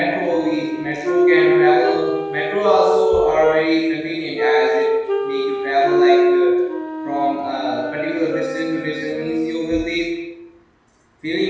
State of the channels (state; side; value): identical; both; correlation 1.00